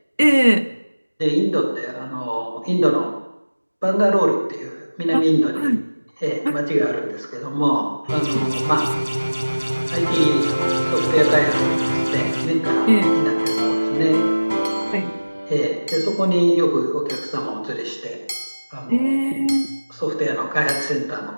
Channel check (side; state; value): both; inverted; correlation -1.00